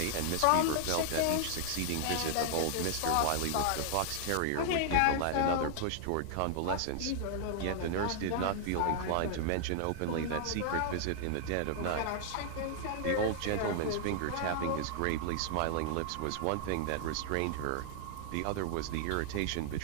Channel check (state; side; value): different; both; correlation 0.00